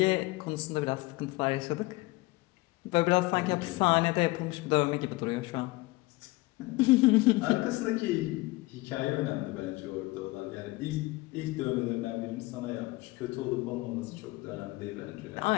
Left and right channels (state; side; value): quieter; right; 21.5 dB